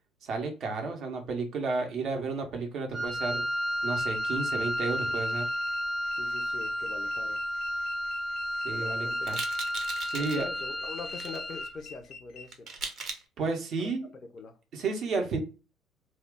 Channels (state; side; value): normal; both; correlation 0.84